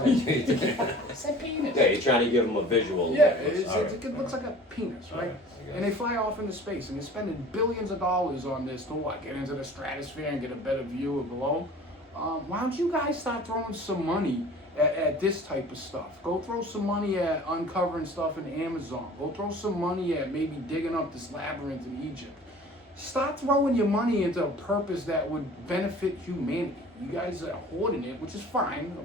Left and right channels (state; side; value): normal; both; correlation 0.45